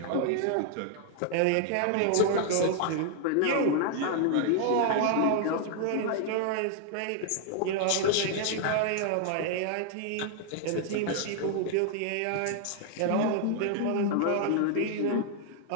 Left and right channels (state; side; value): different; both; correlation 0.00